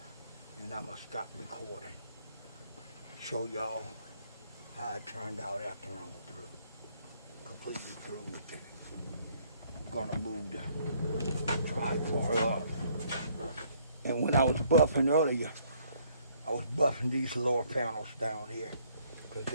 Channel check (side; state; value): both; inverted; correlation -0.65